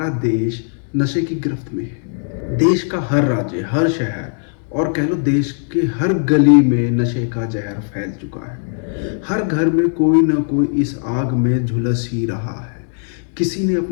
देश नशे की गिरफ्त में है। देश का हर राज्य, हर शहर और कह लो देश के हर गली में नशे का जहर फैल चुका है। हर घर में कोई ना कोई इस आग में झुलस ही रहा है। किसी ने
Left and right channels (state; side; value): silent; right; 61 dB below the other